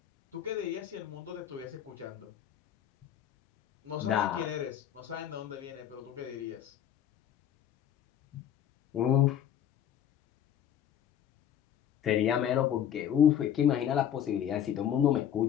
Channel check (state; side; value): quieter; right; 10.0 dB